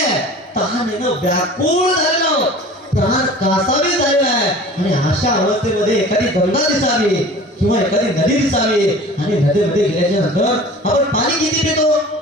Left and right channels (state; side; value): normal; both; correlation 0.42